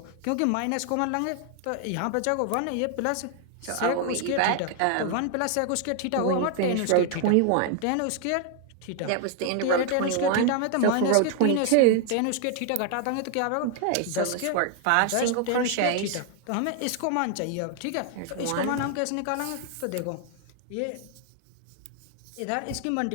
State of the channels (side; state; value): both; different; correlation 0.00